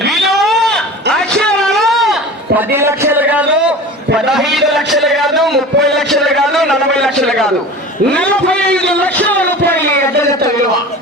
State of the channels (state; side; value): normal; both; correlation 0.36